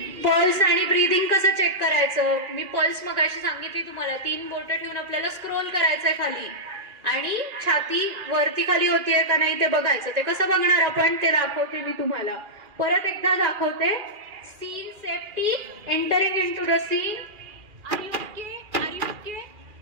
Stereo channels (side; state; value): left; late; 2.4 ms